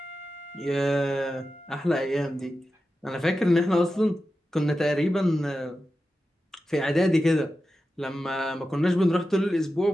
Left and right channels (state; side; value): normal; both; correlation 0.92